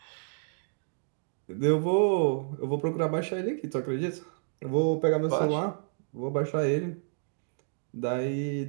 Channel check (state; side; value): silent; left; digital silence